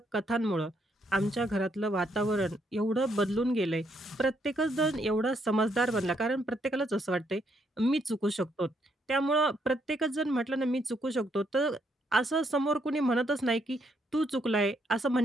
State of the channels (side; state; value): both; normal; correlation 0.74